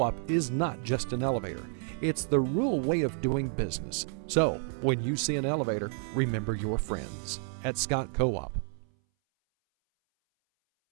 is not just an elevator. It's the rural way of doing business. So, when you see an elevator, remember your friends at Scott Co-op.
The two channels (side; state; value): left; silent; 58 dB below the other